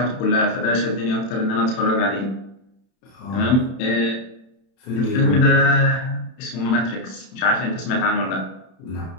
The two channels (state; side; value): late; right; 31 ms